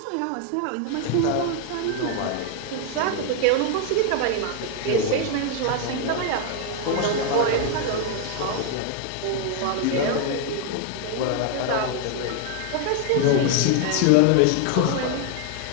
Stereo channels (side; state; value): both; different; correlation 0.01